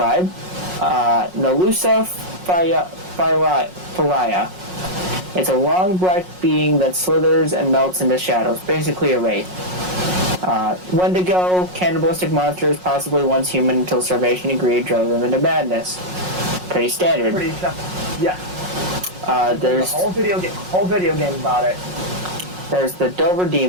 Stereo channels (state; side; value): late; left; 5.5 ms